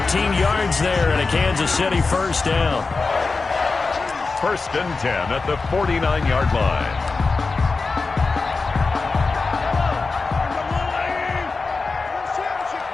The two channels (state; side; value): quieter; right; 4.1 dB